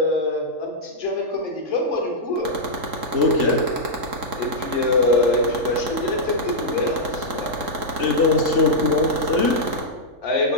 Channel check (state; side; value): late; left; 3.7 ms